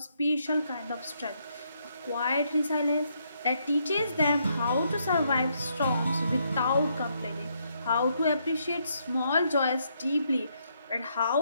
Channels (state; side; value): inverted; both; correlation -0.75